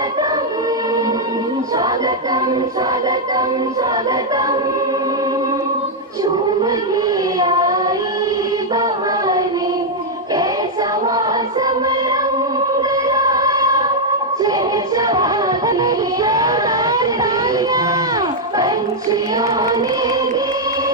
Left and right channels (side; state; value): both; normal; correlation -0.02